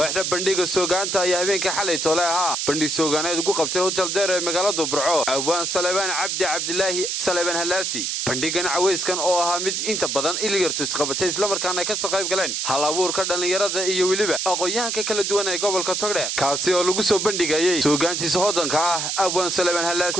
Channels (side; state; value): right; noise; hiss, 1 dB below the sound